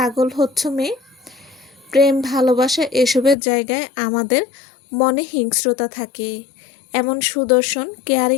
হচ্ছ মেয়ে? প্রেম, ভালোবাসা এসবের জায়গায় আমাদের মনে হিংস্রতা থাকে। এমন সুদর্শন,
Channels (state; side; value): drops out; right; at 3.4 s